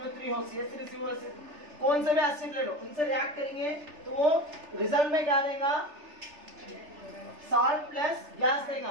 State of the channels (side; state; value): left; late; 3.4 ms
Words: हो, CH3CO एसिड, कौन से भी एसिड ले लो, उनसे रिएक्ट करेंगे तो वो रिजल्ट में क्या देगा, साल्ट प्लस गैस देगा,